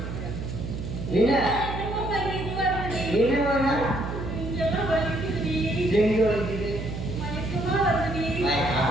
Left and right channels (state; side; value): noise; right; hum, 6 dB below the sound